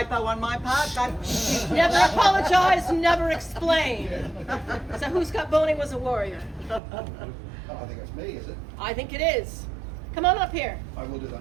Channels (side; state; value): left; drops out; at 6.8 s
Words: on my part. Never apologize, never explain. So who Scott Boney was a warrior? I think it's me, is it? I think it is. Come on up here. I will do